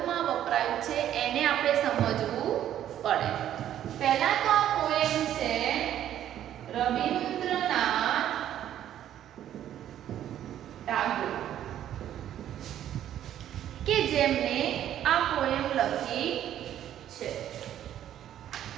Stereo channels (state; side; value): quieter; left; 11.2 dB